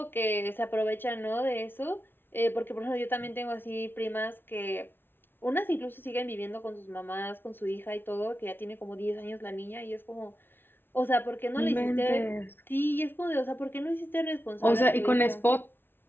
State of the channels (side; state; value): right; late; 0.10 ms